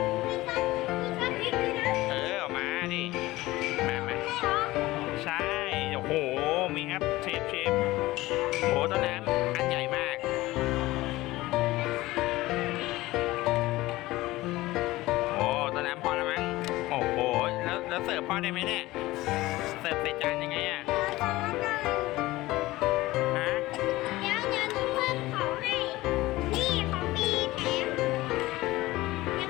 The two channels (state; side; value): quieter; right; 18.4 dB